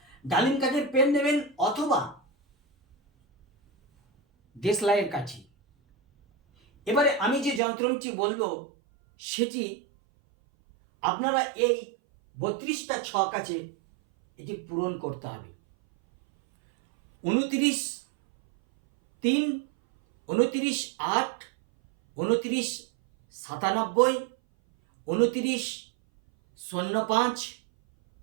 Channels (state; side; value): drops out; left; at 7.6 s